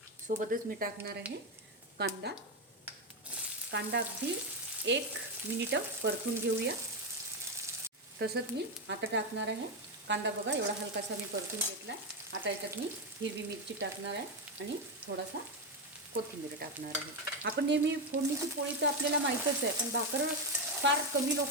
सोबतच मी टाकणार आहे कांदा। कांदा अगदी 1 मिनिट परतून घेऊया। तसंच मी आता टाकणार आहे कांदा, बघा एवढा हलकासा मी परतून घेतला। आता याच्यात मी हिरवी मिरची टाकणार आहे आणि थोडासा कोथिंबीर टाकणार आहे। आपण नेहमी फोडणीची पोळी तर आपल्याला माहीतच आहे, पण भाकर फार कमी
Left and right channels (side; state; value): both; normal; correlation 0.09